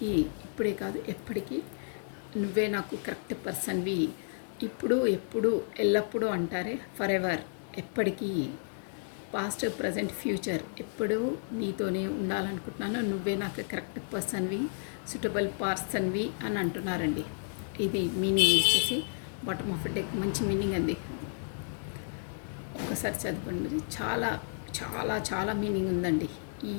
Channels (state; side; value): silent; right; 57 dB below the other